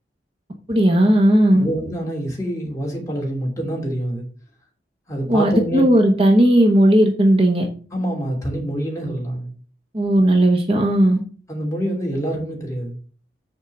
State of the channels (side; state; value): both; normal; correlation 0.87